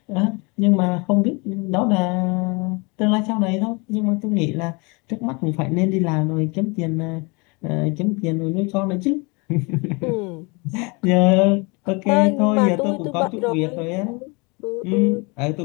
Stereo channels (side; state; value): right; quieter; 29.2 dB